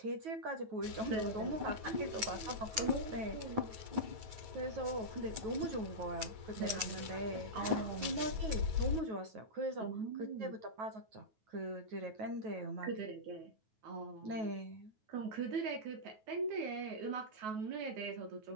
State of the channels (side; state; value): left; late; 9.3 ms